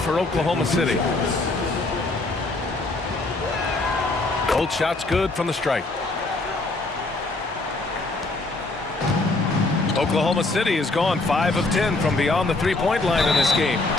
Oklahoma City. Both shots good from the stripe. Oklahoma City has gone 5 of 10 from beyond the three-point line in this game.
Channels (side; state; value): right; quieter; 3.1 dB